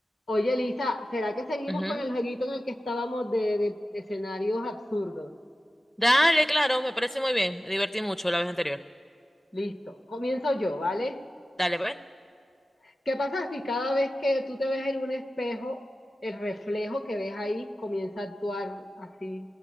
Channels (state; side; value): normal; both; correlation 0.95